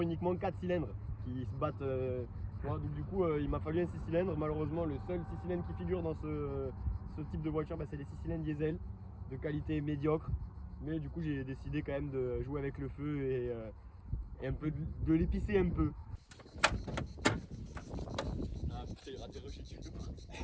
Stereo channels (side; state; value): both; identical; correlation 1.00